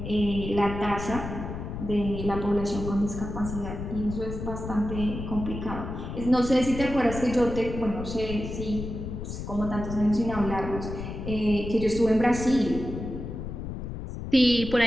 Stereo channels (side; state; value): left; noise; rumble, 7 dB below the sound